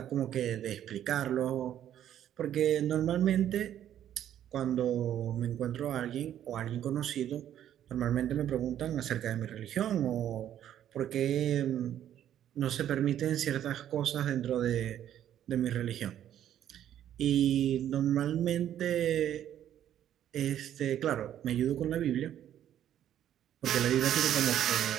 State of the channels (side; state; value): left; quieter; 10.9 dB